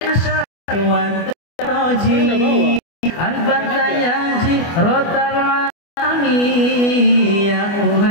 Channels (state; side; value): late; right; 24 ms